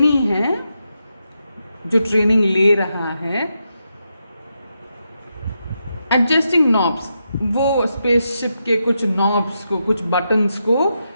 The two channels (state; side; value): inverted; both; correlation -0.85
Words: है जो ट्रेनिंग ले रहा है। एडजस्टिंग नॉब्स, वो स्पेसशिप के कुछ नॉब्स को, कुछ बटन्स को